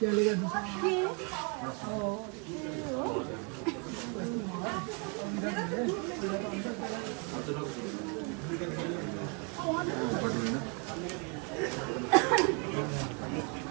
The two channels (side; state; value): left; quieter; 35.5 dB